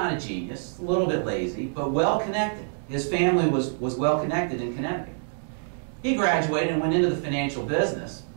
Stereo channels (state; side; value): silent; left; digital silence